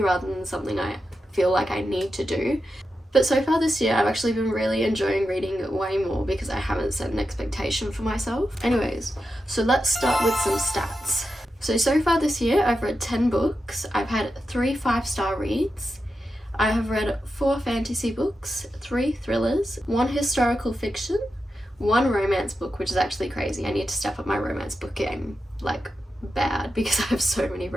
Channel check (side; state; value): both; normal; correlation 0.89